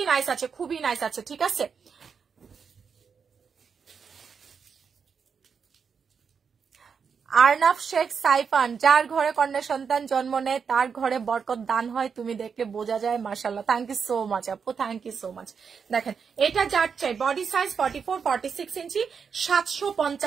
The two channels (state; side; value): quieter; left; 6.2 dB